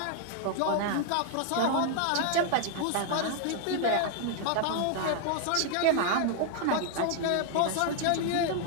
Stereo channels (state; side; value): different; both; correlation 0.00